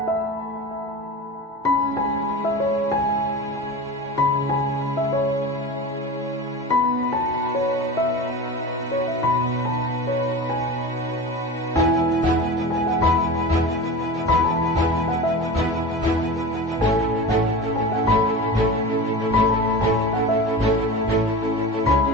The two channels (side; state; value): both; normal; correlation 0.31